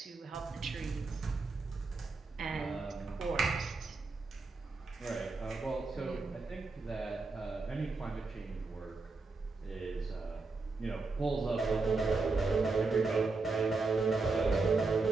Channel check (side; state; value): left; quieter; 3.9 dB